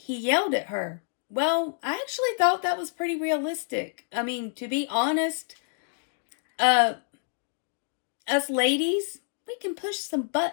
yelled at her. Well, I actually thought that was pretty realistic. I mean, to be honest, us ladies, we can push some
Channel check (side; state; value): right; silent; digital silence